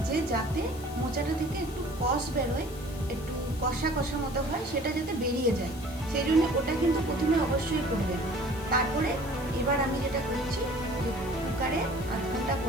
যে যাতে মোচাটা থেকে একটু কষ বেরোয়, একটু কষা কষা মতো হয়, সেটা যাতে বেরিয়ে যায়, সেই জন্য ওটা কিন্তু প্রথমে অবশ্যই করবেন। তারপরে এবার আমি যেটা করছি যে কুকারে আধ ঘন্টা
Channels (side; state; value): left; noise; hiss, 18 dB below the sound